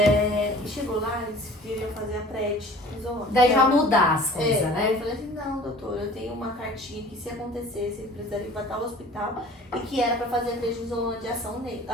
chegou lá, eles queriam fazer a prednisona. Daí vai mudar as coisas, né? Eu falei assim, não, doutor, eu tenho uma cartinha que se acontecesse, ele precisaria ir para tal hospital, e que era pra fazer a prednisona de ação nele,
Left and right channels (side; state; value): both; normal; correlation 0.46